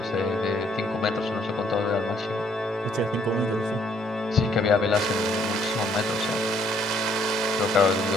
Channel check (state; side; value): normal; both; correlation 0.66